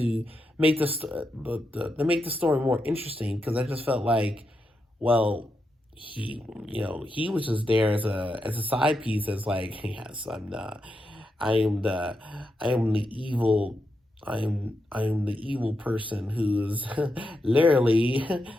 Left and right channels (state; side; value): normal; both; correlation 0.85